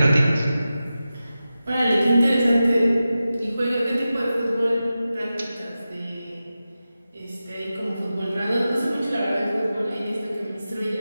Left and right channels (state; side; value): inverted; both; correlation -0.93